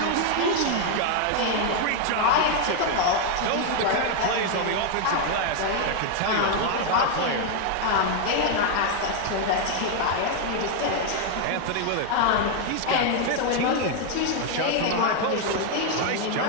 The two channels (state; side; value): different; both; correlation 0.00